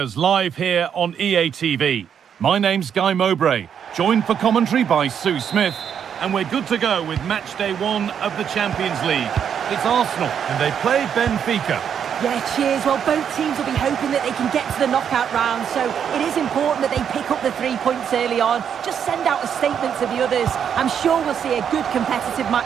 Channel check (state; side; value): quieter; left; 8.1 dB